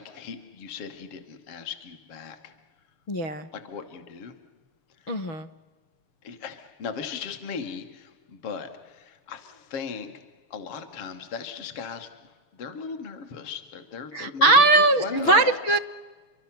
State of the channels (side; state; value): right; late; 6.8 ms